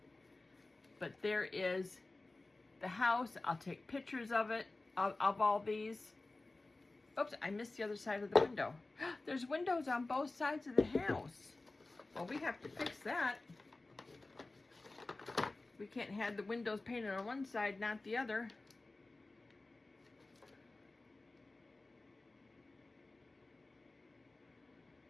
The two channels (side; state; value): right; quieter; 3.1 dB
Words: But there is the house. I'll take pictures of it, of all these. Oops, I missed the other side of the window. There's windows on both sides of the house. Well, we have to fix that. We can't have the windows painted on one side, not the other.